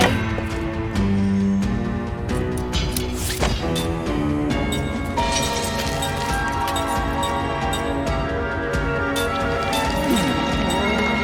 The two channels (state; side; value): identical; both; correlation 1.00